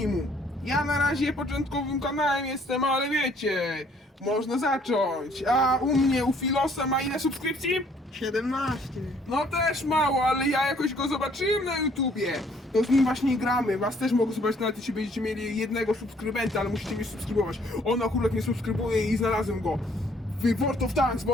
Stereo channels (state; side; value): normal; both; correlation 0.62